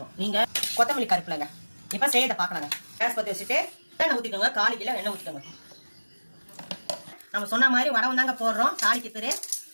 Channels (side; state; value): both; inverted; correlation -1.00